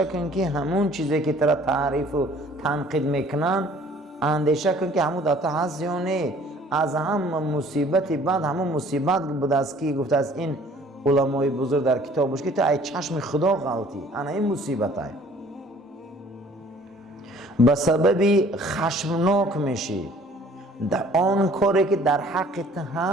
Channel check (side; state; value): both; normal; correlation 0.54